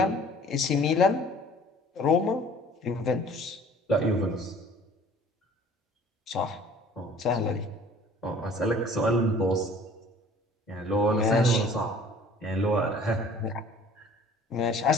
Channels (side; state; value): both; normal; correlation 0.50